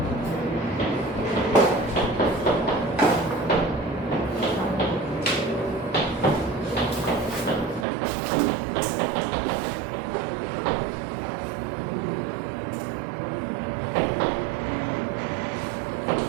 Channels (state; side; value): drops out; left; at 7.9 s